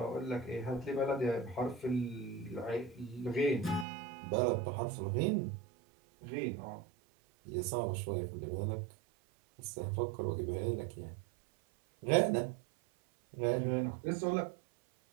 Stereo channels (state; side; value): drops out; left; at 3.9 s